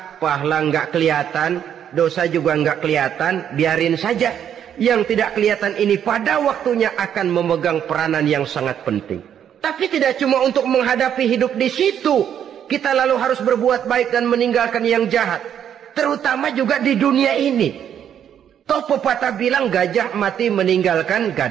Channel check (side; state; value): left; quieter; 9.3 dB